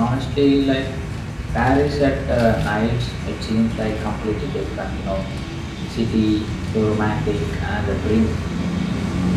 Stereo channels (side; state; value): both; identical; correlation 1.00